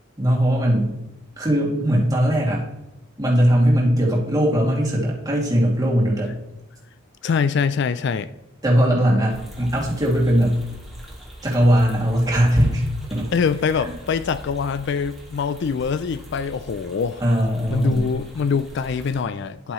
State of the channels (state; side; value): normal; both; correlation 0.75